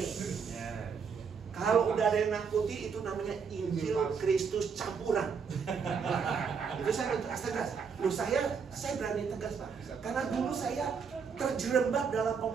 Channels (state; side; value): quieter; left; 6.0 dB